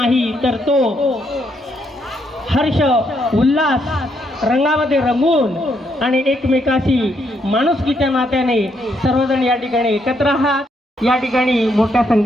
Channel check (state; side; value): normal; both; correlation 0.75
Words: तर तो हर्ष उल्हास रंगामध्ये रंगून आणि एकमेकाशी माणुसकीच्या नात्याने सर्वजण या ठिकाणी एकत्र आहात. या ठिकाणी मोठ्या